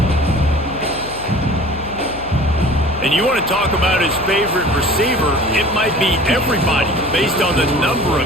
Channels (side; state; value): left; noise; hum, 15 dB below the sound